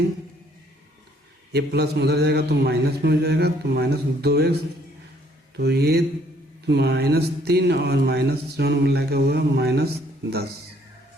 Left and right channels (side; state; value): both; normal; correlation 0.64